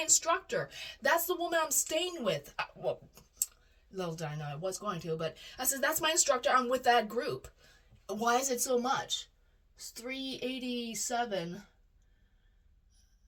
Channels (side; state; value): both; identical; correlation 1.00